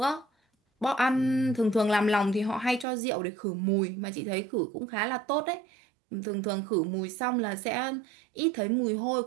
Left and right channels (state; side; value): drops out; left; at 2.9 s